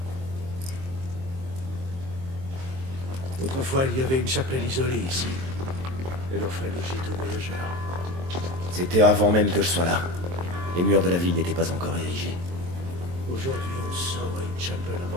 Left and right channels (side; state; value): left; late; 23 ms